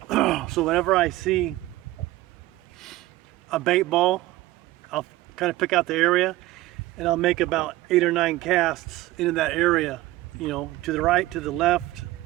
So whenever I see a bait ball, I'll kind of pick out the area, and I'll make about 8 or 9 casts into that area, you know, to the right, to the left,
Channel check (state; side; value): quieter; left; 17.3 dB